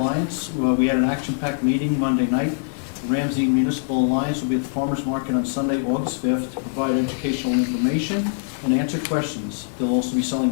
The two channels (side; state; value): right; silent; digital silence